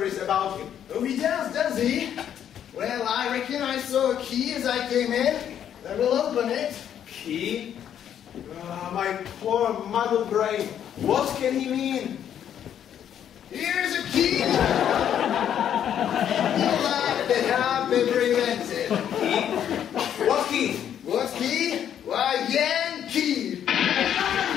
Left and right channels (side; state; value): right; quieter; 9.6 dB